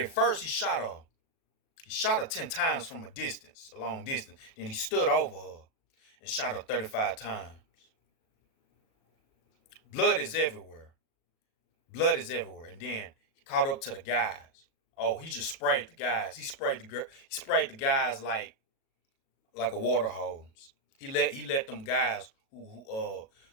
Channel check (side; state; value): right; late; 37 ms